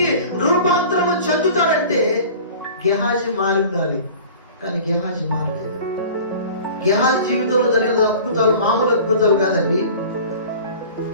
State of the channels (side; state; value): both; inverted; correlation -0.41